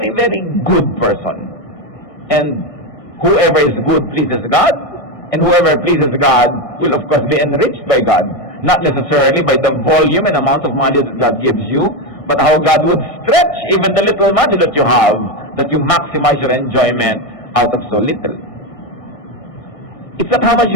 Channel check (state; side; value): late; right; 1.6 ms